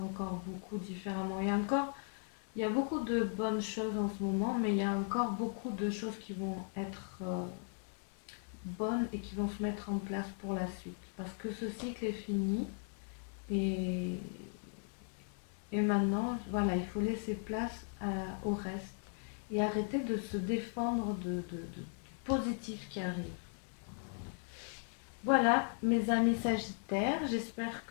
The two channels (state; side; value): silent; right; 53 dB below the other